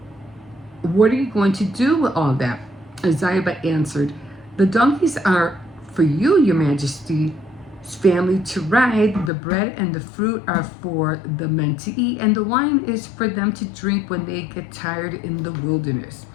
"What are you going to do with all that?" Ziba answered, "The donkeys are for you, your majesty, family to ride. The bread and the fruit are for the men to eat, and the wine is for them to drink when they get tired in the wilderness.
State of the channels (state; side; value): drops out; right; at 9.3 s